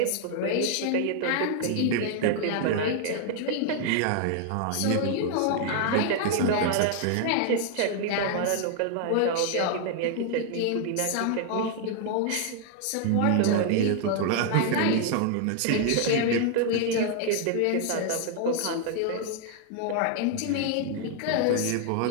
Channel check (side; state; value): both; different; correlation 0.00